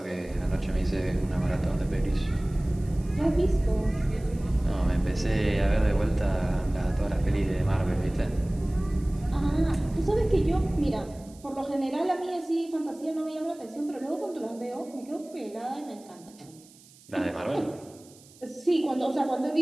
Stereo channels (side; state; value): right; noise; hiss, 25 dB below the sound